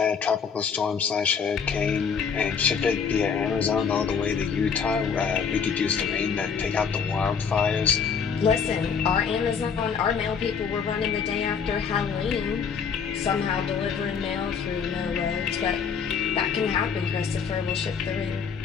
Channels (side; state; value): right; quieter; 6.4 dB